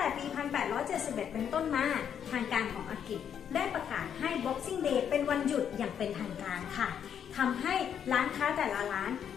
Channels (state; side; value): quieter; right; 8.5 dB